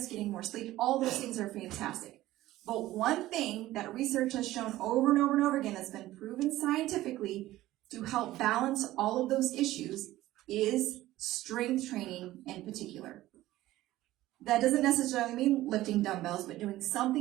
getting more sleep, all those things are fantastic. But one thing that research has shown over and over and over again that's been proven scientifically to help balance all of those issues is strength training in particular. That doesn't necessarily mean lifting dumbbells, but doing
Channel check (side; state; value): left; quieter; 15.9 dB